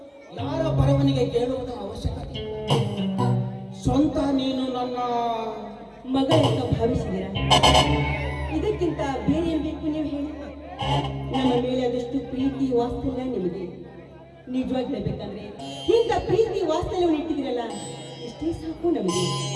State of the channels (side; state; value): both; identical; correlation 1.00